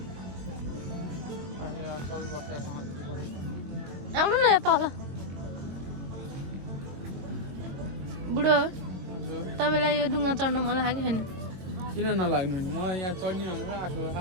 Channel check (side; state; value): left; late; 22 ms